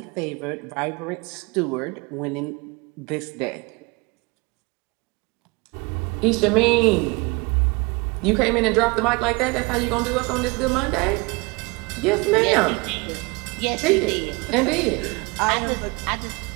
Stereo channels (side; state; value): left; quieter; 26.8 dB